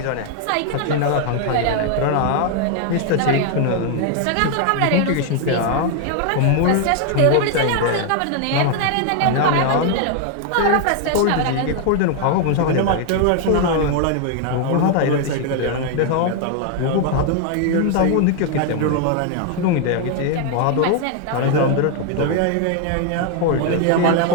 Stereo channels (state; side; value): different; both; correlation 0.00